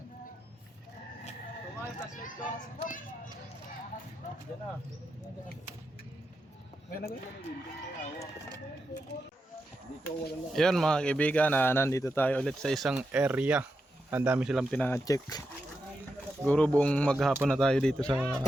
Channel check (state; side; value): normal; both; correlation 0.87